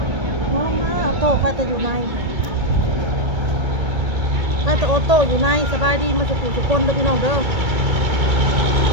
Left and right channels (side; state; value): left; late; 1.8 ms